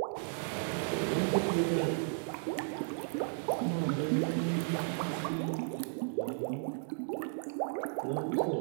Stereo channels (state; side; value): silent; left; digital silence